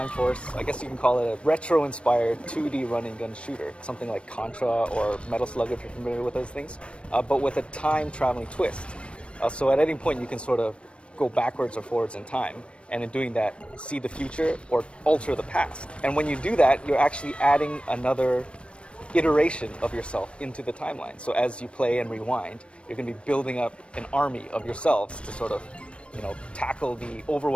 Force, I guess you can call it a retro-inspired 2D running gun shooter, something like Contra or Metal Slug if you're familiar with those things, but with a time-traveling twist. So at any point you can sort of go backwards or forwards in time, and in doing that, see the future or alter the past. And when you do that, you're actually adding another iteration of yourself into the timeline. So as you play and rewind, you're going to be building up an army of yourselves to sort of, tackle the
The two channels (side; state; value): right; late; 0.059 ms